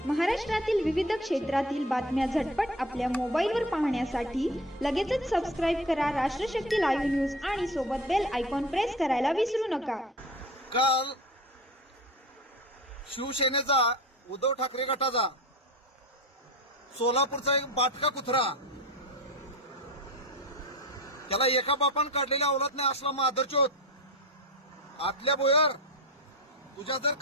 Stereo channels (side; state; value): both; normal; correlation 0.32